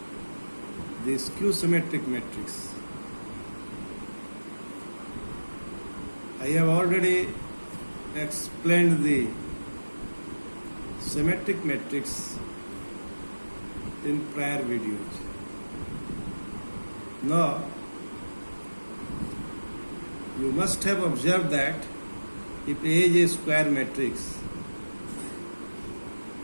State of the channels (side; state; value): both; inverted; correlation -1.00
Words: the skew symmetric matrix. I have already explained the symmetric matrix in prior videos. Now, you must have observed that if A is a square matrix,